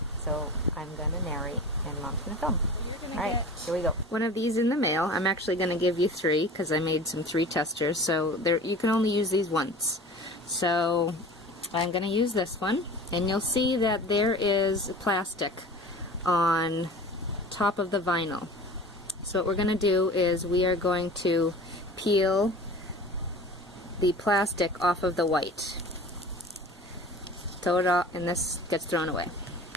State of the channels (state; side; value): normal; both; correlation 0.39